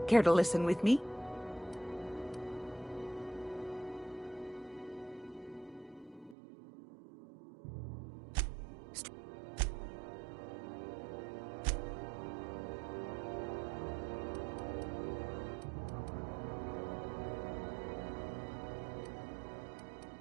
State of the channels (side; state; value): left; drops out; at 6.4 s